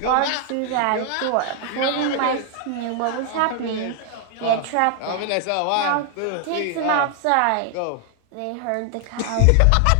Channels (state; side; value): different; both; correlation 0.00